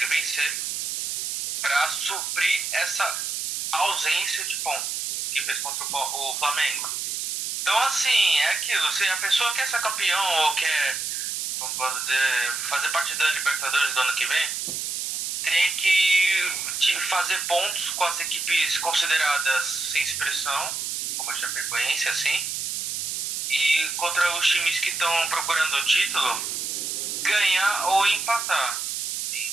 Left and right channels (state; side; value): noise; right; hiss, 3 dB below the sound